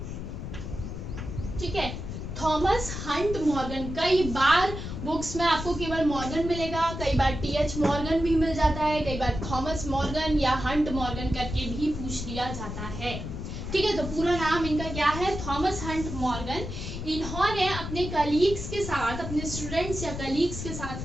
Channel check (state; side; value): noise; left; rumble, 7 dB below the sound